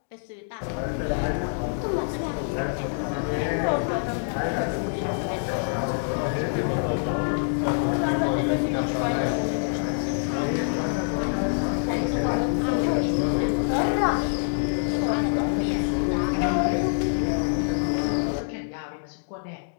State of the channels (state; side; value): silent; right; digital silence